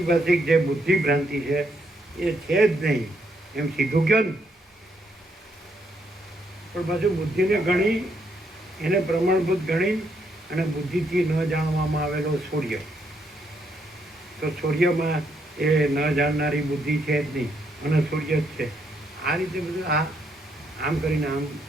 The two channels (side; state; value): both; normal; correlation 0.75